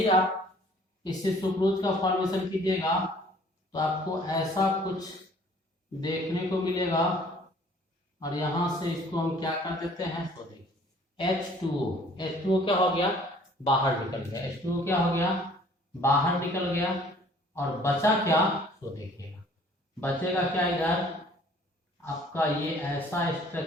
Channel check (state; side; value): normal; both; correlation 0.55